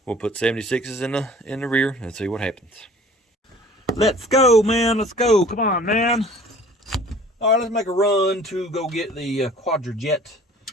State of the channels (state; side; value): normal; both; correlation 0.49